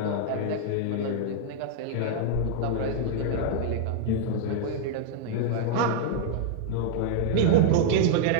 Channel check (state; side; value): different; both; correlation 0.00